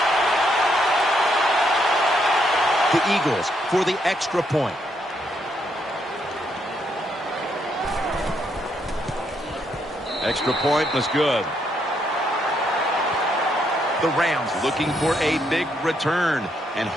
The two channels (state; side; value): normal; both; correlation 0.75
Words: The Eagles for the extra point. Extra point was good. The Rams looking for a big return and